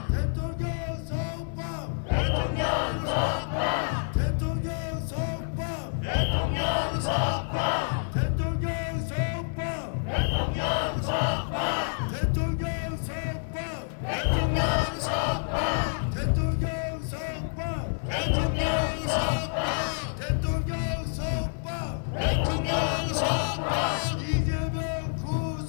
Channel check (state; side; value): silent; right; 59 dB below the other